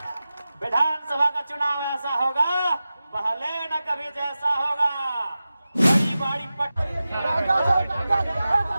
विधानसभा का चुनाव ऐसा होगा, पहले न कभी जैसा होगा। बड़ी बड़ी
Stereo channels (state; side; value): inverted; both; correlation -0.94